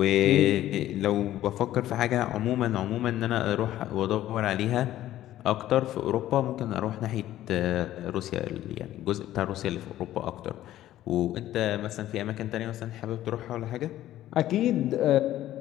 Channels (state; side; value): quieter; right; 13.5 dB